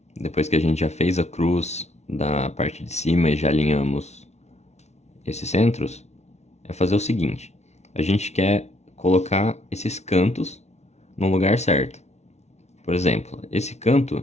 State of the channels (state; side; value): late; right; 0.32 ms